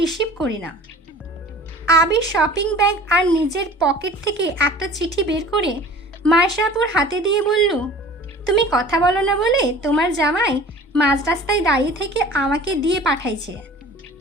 করি না। আবির শপিং ব্যাগ আর নিজের পকেট থেকে একটা চিঠি বের করে মায়েশাপুর হাতে দিয়ে বলল, তুমি কথা বলো না বলে তোমার জামাই মাঝ রাস্তায় দাঁড়িয়ে থেকে আমাকে দিয়ে পাঠাইছে,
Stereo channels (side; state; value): both; normal; correlation 0.44